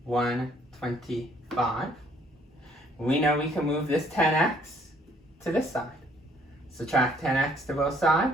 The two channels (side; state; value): both; normal; correlation 0.63